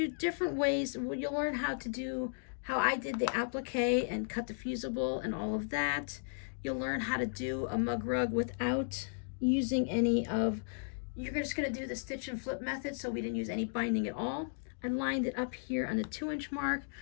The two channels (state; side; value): silent; right; digital silence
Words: different ways. You'll learn how to do, how I did the applique and cut the fusible and all of that. You'll learn how to do a mug rug without using any of, you're just going to do the stitch and flip method, so we didn't use any binding at all. I lined it up here on the 2-inch mark.